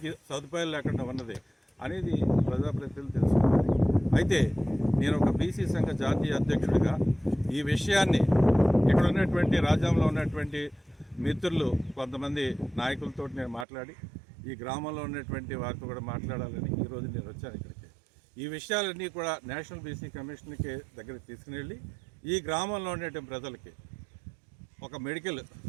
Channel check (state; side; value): drops out; left; at 13.7 s